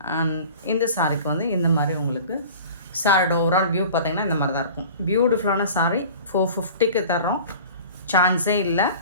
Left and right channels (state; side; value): inverted; both; correlation -0.41